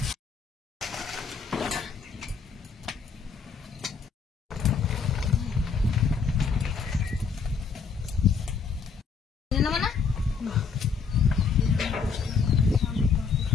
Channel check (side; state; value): right; quieter; 5.5 dB